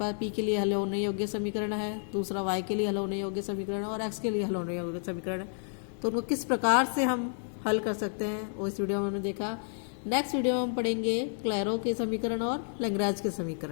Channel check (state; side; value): silent; right; digital silence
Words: p के लिए हल होने योग्य समीकरण है, दूसरा y के लिए हल होने योग्य समीकरण है और x के लिए हल होने योग्य समीकरण है, तो उनको किस प्रकार से हम हल कर सकते हैं वो इस वीडियो में हमने देखा। नेक्स्ट वीडियो में हम पढ़ेंगे क्लैरो के समीकरण और लैग्रेंज के